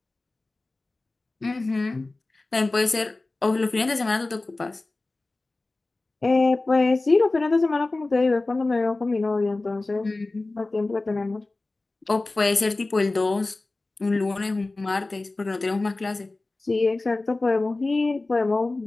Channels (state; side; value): quieter; right; 3.1 dB